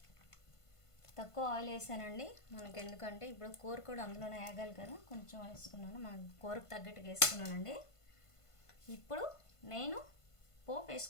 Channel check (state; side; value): late; right; 1.5 ms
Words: తక్కువ ఆయిల్ వేసానండి మనకి, ఎందుకంటే ఇప్పుడు కూర కూడా అందులోనే వేగాలి కదా, కొంచెం వేసుకున్నాను. మన కూరకు తగ్గట్టుగా వేసుకున్నానండి. ఇప్పుడు నేను పోపు